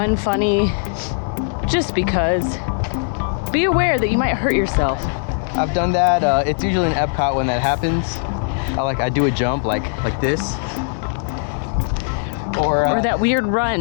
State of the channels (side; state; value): right; silent; digital silence